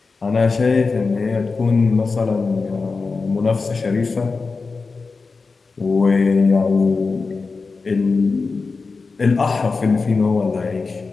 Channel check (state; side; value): quieter; right; 4.3 dB